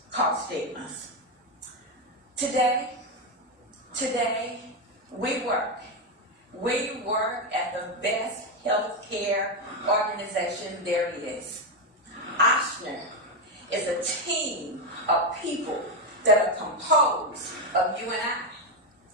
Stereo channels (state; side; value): normal; both; correlation 0.07